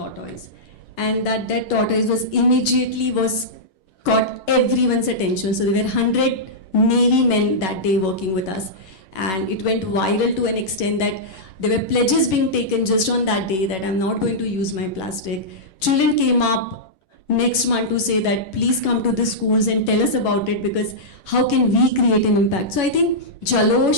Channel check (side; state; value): right; late; 11 ms